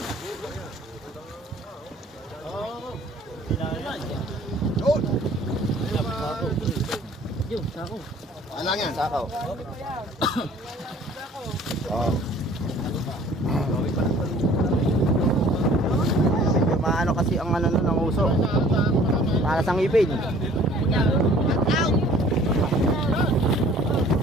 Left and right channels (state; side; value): normal; both; correlation 0.53